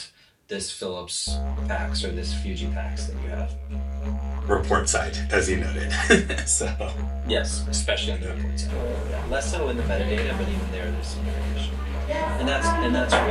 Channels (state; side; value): identical; both; correlation 1.00